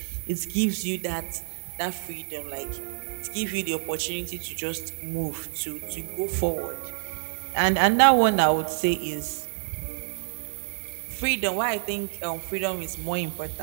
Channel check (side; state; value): left; silent; 60 dB below the other